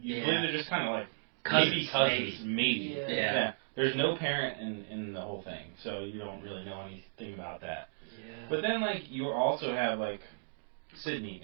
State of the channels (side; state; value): left; silent; digital silence